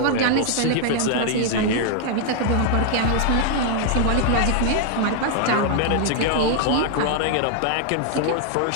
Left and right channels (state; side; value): different; both; correlation 0.00